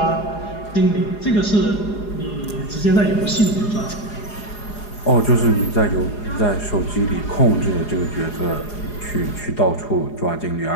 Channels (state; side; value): late; right; 4.8 ms